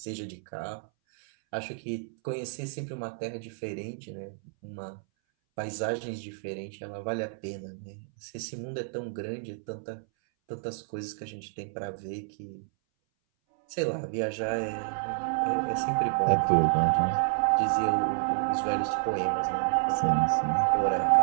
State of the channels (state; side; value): silent; left; 58 dB below the other